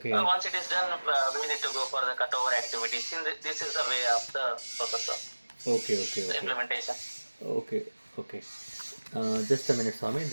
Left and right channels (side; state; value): both; inverted; correlation -1.00